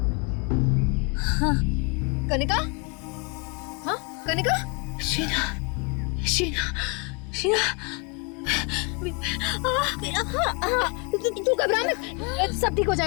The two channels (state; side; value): quieter; right; 32.1 dB